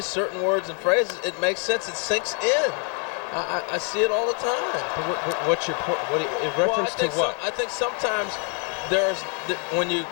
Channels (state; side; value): quieter; right; 39.7 dB